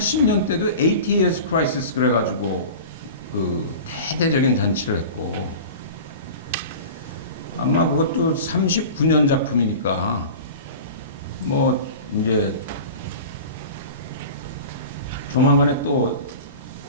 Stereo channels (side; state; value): both; inverted; correlation -0.35